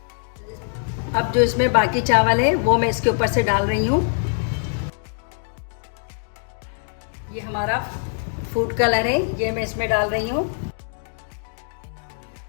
अब जो इसमें बाकी चावल है वो मैं इसके ऊपर से डाल रही हूँ। ये हमारा फूड कलर है, ये मैं इसमें डाल रही हूँ।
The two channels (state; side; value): silent; right; 63 dB below the other